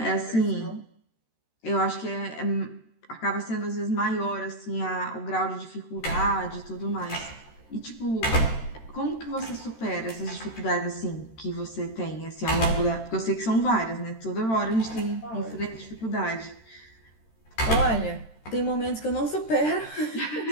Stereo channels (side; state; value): right; late; 13 ms